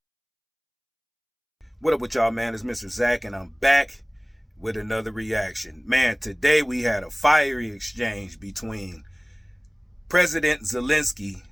What up with y'all, man? It's Mr. Zach, and I'm back with another reaction. Man, today we had a fiery exchange between President Zelensky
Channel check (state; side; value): identical; both; correlation 1.00